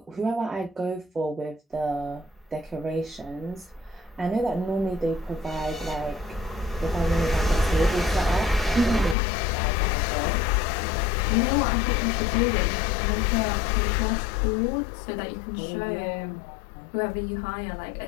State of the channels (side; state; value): right; drops out; at 9.2 s